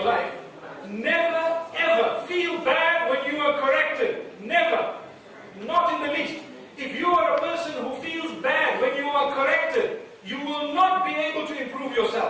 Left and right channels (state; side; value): identical; both; correlation 1.00